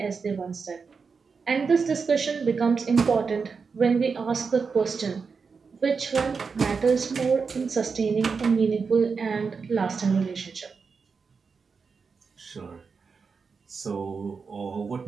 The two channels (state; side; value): quieter; left; 5.2 dB